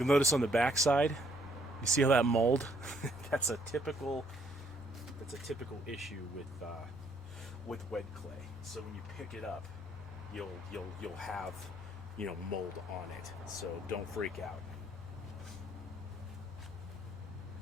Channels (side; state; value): both; normal; correlation 0.67